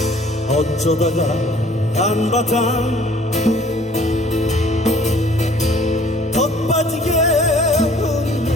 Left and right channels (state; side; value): normal; both; correlation 0.55